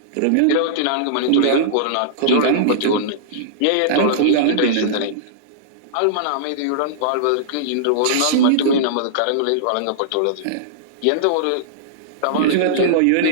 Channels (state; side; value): different; both; correlation -0.02